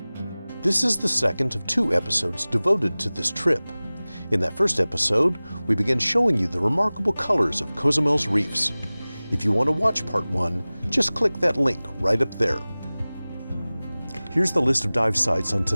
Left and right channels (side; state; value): both; inverted; correlation -0.99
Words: This is the second of 2 episodes devoted to this trip. In that first episode, we began showing you the remarkable colors of Cozumel's reefs. If you want to watch part 1, just click that link right up there. Here's the list of dive sites on